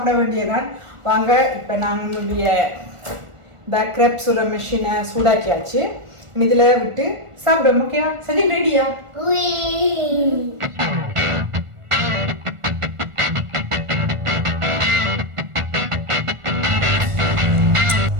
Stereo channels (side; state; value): left; late; 1.4 ms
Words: வேண்டியதான். வாங்க, இப்ப நம்மளுடைய இந்த கிரெப் சுட மெஷினை சூடாக்கியாச்சு. இதுல விட்டு சாப்பிட. முக்கியம் சஜின் ரெடியா?